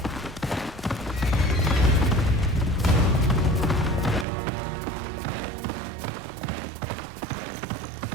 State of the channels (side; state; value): left; drops out; at 4.2 s